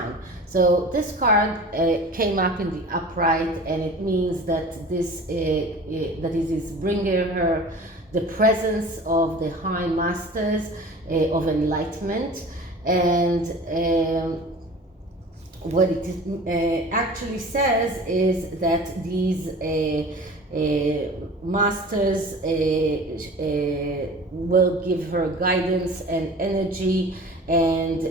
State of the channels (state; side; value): normal; both; correlation 0.40